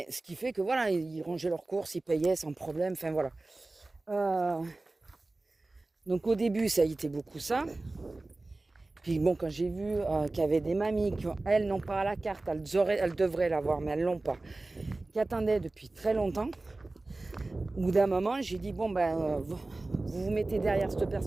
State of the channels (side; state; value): left; quieter; 3.1 dB